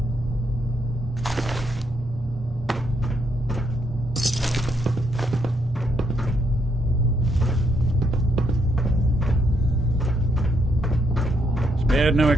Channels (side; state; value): both; normal; correlation 0.75